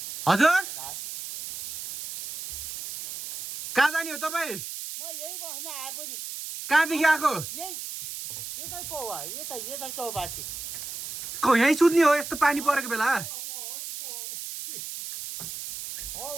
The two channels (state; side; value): noise; right; hiss, 8 dB below the sound